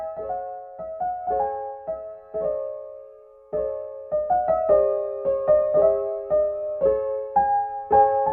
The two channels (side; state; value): both; identical; correlation 1.00